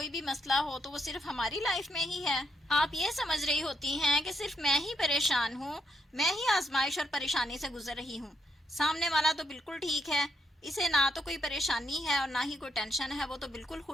بھی مسئلہ ہو تو وہ صرف ہماری لائف میں ہی ہے. آپ یہ سمجھ رہی ہوتی ہیں کہ صرف میں ہی پریشان ہوں، میں ہی آزمائش اور پریشانی سے گزر رہی ہوں. سامنے والا تو بالکل ٹھیک ہے، اسے نہ تو کوئی پریشانی ہے اور نہ ہی کوئی ٹینشن ہے، وہ تو بالکل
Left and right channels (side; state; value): both; normal; correlation 0.77